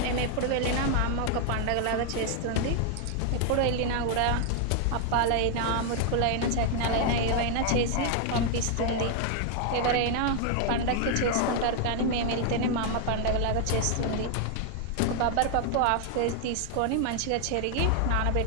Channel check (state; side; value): different; both; correlation 0.00